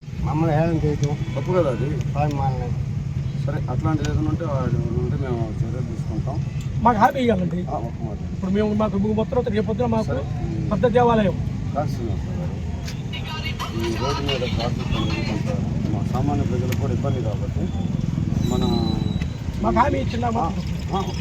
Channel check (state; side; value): identical; both; correlation 1.00